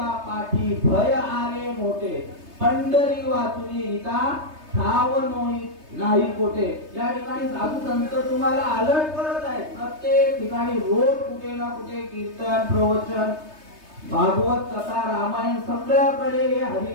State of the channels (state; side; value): late; left; 3.3 ms